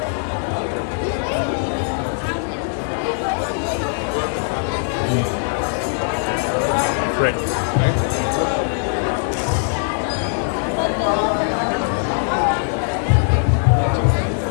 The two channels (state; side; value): silent; right; 63 dB below the other